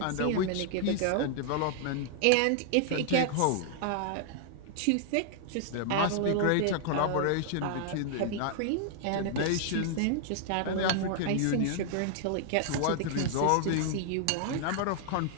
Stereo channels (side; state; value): both; different; correlation 0.00